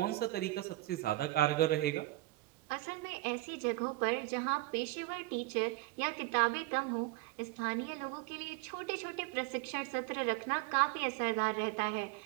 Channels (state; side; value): quieter; left; 18.7 dB